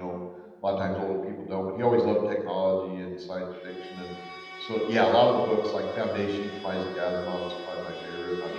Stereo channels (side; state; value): both; identical; correlation 1.00